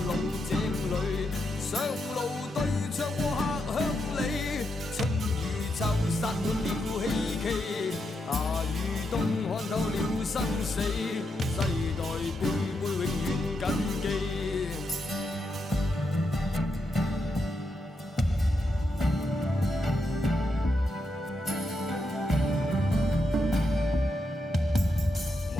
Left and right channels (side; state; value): both; normal; correlation 0.83